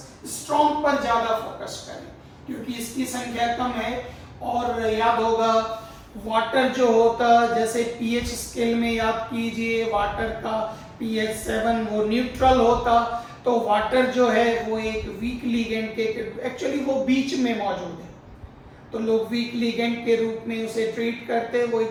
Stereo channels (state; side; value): identical; both; correlation 1.00